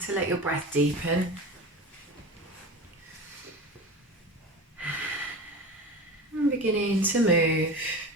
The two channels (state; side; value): normal; both; correlation 0.30